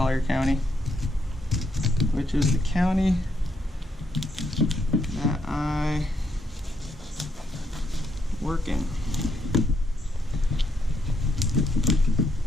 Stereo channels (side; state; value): both; normal; correlation 0.76